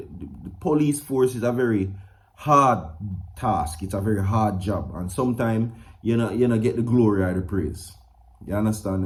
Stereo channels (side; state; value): both; identical; correlation 1.00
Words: police force is a very hard task. It's a very hard job, and sometimes you know get the glory or the praise. You understand?